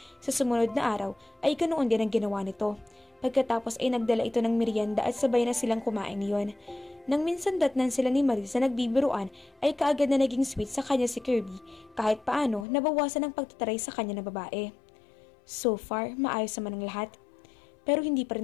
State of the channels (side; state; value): right; drops out; at 12.7 s